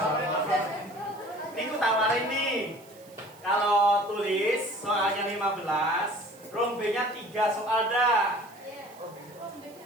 Ini aku tawarin nih. Kalau tulis soalnya 15, rombenya 3 soal dah.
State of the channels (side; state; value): right; noise; hiss, 25 dB below the sound